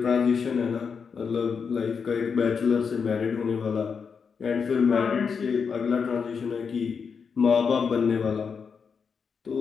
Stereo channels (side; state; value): right; quieter; 6.0 dB